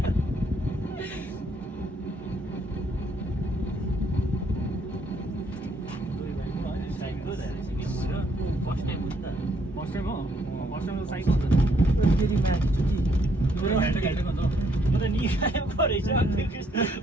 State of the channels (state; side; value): normal; both; correlation 0.69